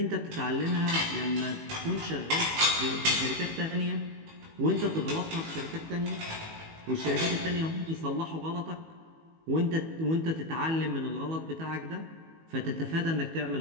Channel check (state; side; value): late; left; 18 ms